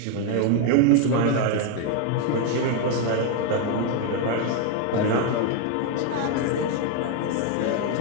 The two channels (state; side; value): different; both; correlation 0.01